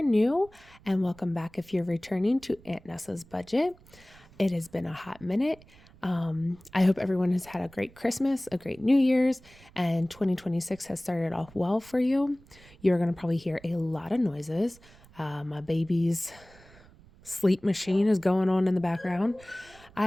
new, and welcome back if you're returning to Aunt Nessa's Budget. It has been a hot minute. I hope everyone has had a great Christmas, a great New Year's, and 2026 has started off well for you. You're going to probably hear a lot of noises. My baby's sleep machine is going on in the background. I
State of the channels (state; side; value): noise; right; rumble, 25 dB below the sound